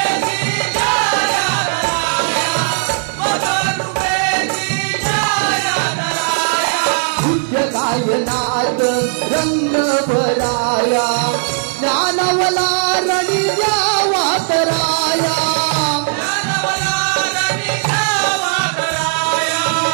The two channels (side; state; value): left; silent; digital silence